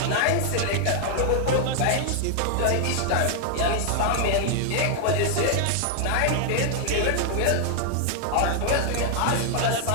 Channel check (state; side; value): different; both; correlation 0.00